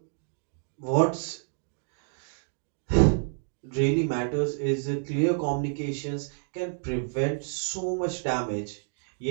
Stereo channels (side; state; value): left; silent; digital silence